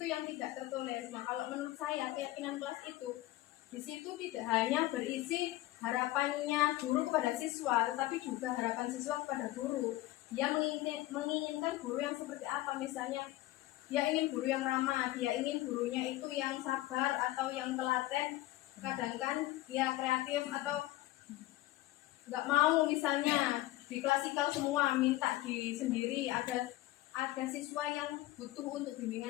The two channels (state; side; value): quieter; right; 17.1 dB